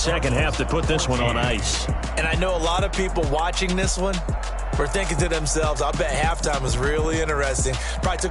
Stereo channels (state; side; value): identical; both; correlation 1.00